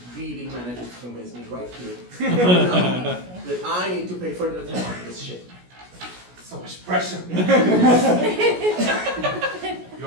really manages to convince me right here that I need to pay further attention to this shit. So much pressure.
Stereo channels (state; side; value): late; left; 17 ms